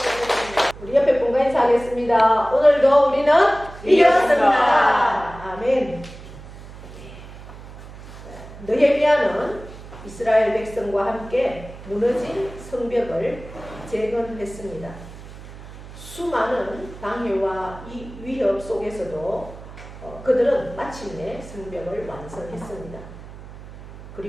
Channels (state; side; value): noise; right; hum, 16 dB below the sound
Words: 우리 옆에 분과 인사하겠습니다. 오늘도 우리는 이겼습니다. 아멘. 느헤미야는 이스라엘 백성과 함께 무너진 성벽을 재건했습니다. 수많은 방해와 위협 속에서도 그들은 마침내 성벽을 완성했습니다.